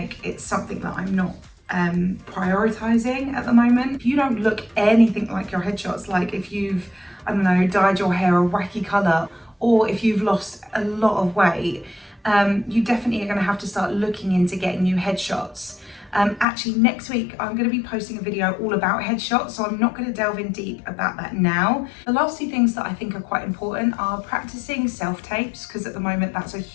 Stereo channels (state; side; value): drops out; right; at 16.4 s